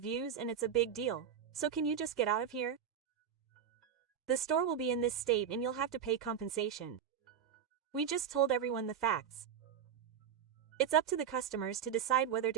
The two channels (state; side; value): quieter; left; 8.3 dB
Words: and it's a big deal, so can you just get out of here? The store will be in this state and you'll have to pay compensation. We just told everyone the facts. It's up to the customers to decide whether